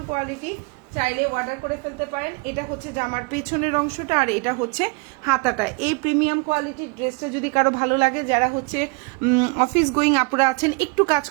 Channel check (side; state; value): left; quieter; 29.9 dB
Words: কোয়ালিটি, চাইলে অর্ডার করে ফেলতে পারেন। এটা হচ্ছে জামার পেছনের অংশটা, আর এটা হচ্ছে হাতাটা। এই প্রিমিয়াম কোয়ালিটির ড্রেসটা যদি কারো ভালো লাগে, যারা হচ্ছে অফিস গোয়িং আপুরা আছেন, একটু কাজ